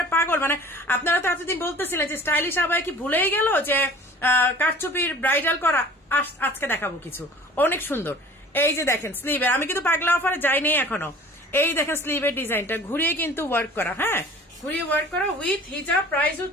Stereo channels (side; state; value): both; normal; correlation 0.46